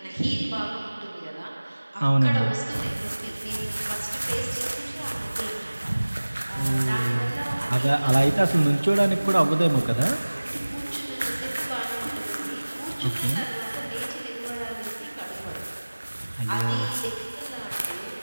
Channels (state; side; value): inverted; both; correlation -1.00